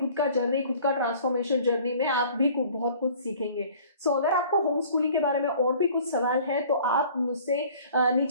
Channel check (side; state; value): both; inverted; correlation -0.50